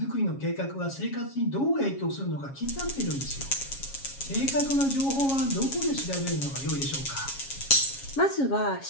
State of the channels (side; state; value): right; late; 7.3 ms